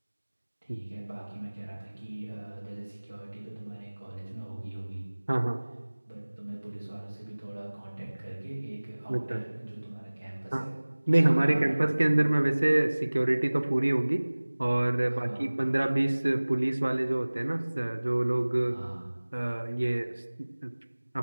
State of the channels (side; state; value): both; inverted; correlation -1.00